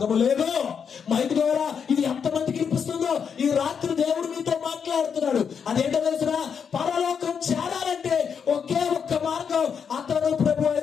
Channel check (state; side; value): quieter; right; 6.9 dB